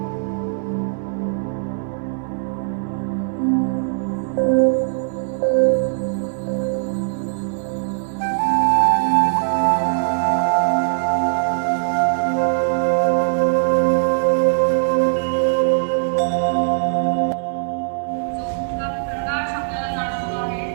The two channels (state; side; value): silent; left; 60 dB below the other